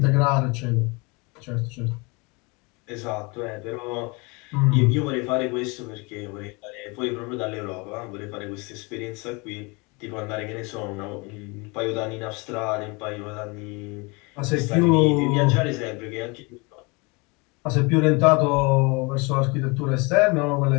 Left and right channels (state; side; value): quieter; right; 28.1 dB